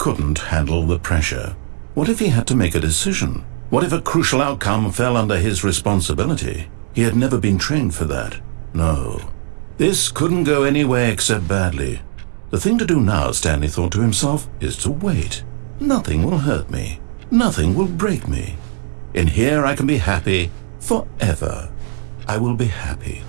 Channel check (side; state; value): left; silent; 67 dB below the other